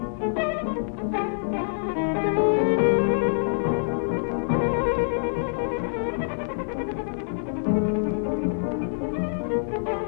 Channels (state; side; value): silent; right; digital silence